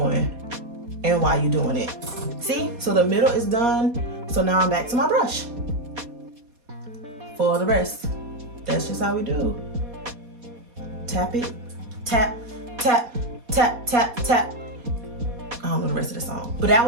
and why you're doing it. See, so the middle is done. So now I'm back to my brush for the rest. That's just how we do. Tap it, tap, tap, tap, tap, tap. I don't know the rest of the song, but that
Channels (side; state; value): left; late; 4.2 ms